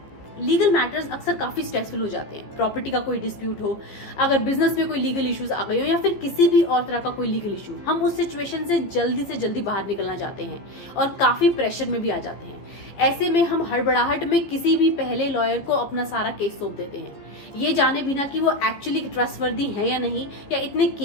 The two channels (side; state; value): right; late; 15 ms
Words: Legal matters अक्सर काफी स्ट्रेसफुल हो जाते हैं। प्रॉपर्टी का कोई डिस्प्यूट हो, अगर बिजनेस में कोई लीगल इश्यूज आ गए हो या फिर किसी भी और तरह का कोई लीगल इशू, हम उस सिचुएशन से जल्दी बाहर निकलना चाहते हैं और काफी प्रेशर में भी आ जाते हैं। ऐसे में हम हड़बड़ाहट में किसी भी पहले लॉयर को अपना सारा केस सौंप देते हैं, ये जाने बिना कि वो एक्चुअली ट्रस्टवर्दी है या नहीं, या इतने